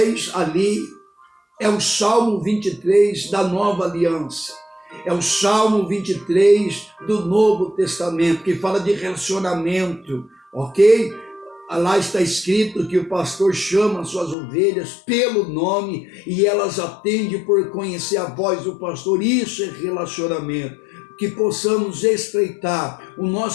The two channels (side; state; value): right; drops out; at 14.4 s